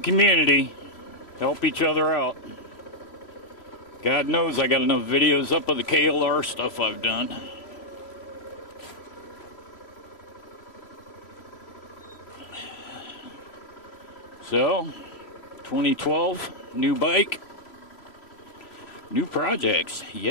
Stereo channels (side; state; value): right; late; 3.0 ms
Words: help each other out. God knows I got enough videos up of the KLR stuff I've done. So, 2012, new bike, new projects,